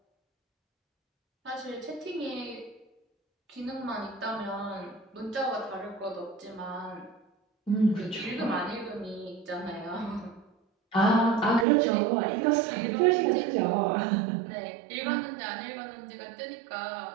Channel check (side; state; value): left; drops out; at 11.7 s